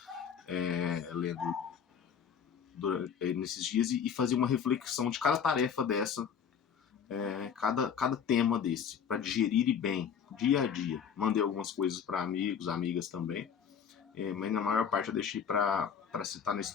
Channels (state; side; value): quieter; right; 7.4 dB